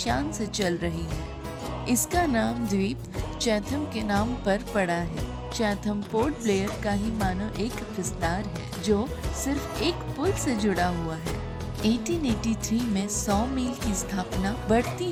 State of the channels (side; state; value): both; identical; correlation 1.00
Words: से चल रही है। इसका नाम द्वीप चैथम के नाम पर पड़ा है। चैथम पोर्ट ब्लेयर का ही मानो एक विस्तार है जो सिर्फ एक पुल से जुड़ा हुआ है। 1883 में सॉ मिल की स्थापना बढ़ती